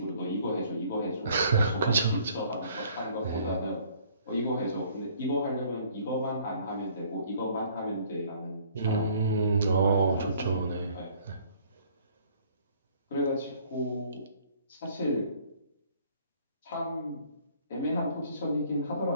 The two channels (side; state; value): both; inverted; correlation -0.58